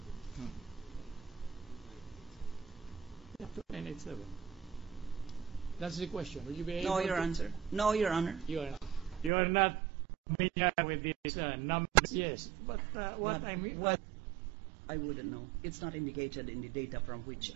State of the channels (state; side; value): drops out; left; at 9.3 s